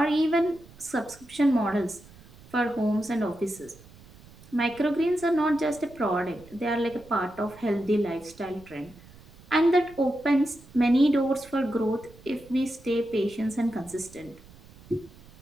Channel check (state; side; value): noise; right; rumble, 23 dB below the sound